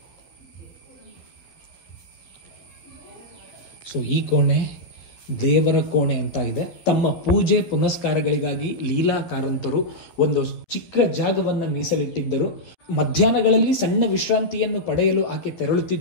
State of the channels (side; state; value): right; late; 11 ms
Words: ಸೊ ಈ ಕೋಣೆ ದೇವರ ಕೋಣೆ ಅಂತ ಇದೆ. ತಮ್ಮ ಪೂಜೆ ಪುನಸ್ಕಾರಗಳಿಗಾಗಿ ಲೀಲಾ ಕಾರಂತರು ಒಂದು ಚಿಕ್ಕ ಜಾಗವನ್ನು ಮೀಸಲಿಟ್ಟಿದ್ದರು. ಮಧ್ಯಾಹ್ನಗಳಲ್ಲಿ ಸಣ್ಣ ವಿಶ್ರಾಂತಿಯನ್ನು ಪಡೆಯಲು ಆಕೆ